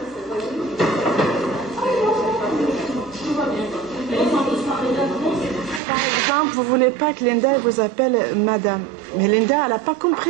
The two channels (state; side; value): drops out; left; at 5.8 s